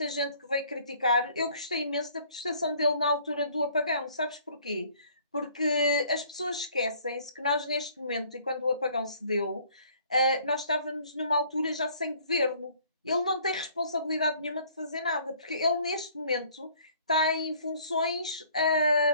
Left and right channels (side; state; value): both; inverted; correlation -0.57